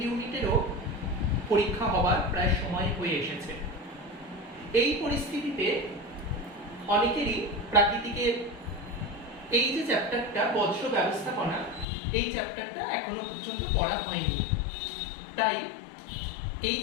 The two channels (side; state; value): right; drops out; at 11.9 s